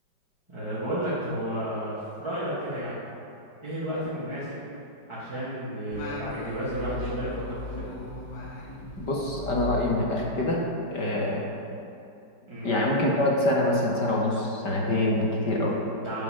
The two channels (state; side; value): late; right; 5.2 ms